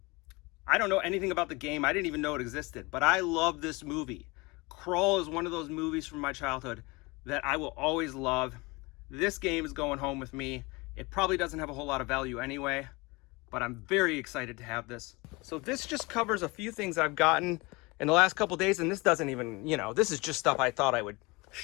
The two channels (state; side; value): quieter; right; 25.0 dB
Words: don't know anything about the game. I didn't even know it existed, but I love this movie. Crawl is one of those movies from my childhood that I will always love. This game is going home with me. It probably doesn't have a whole lot of value anyway, but I'm very excited to have this. So this just covers a few things I've gotten in the last couple days, and this doesn't even, this is just stuff I thought I would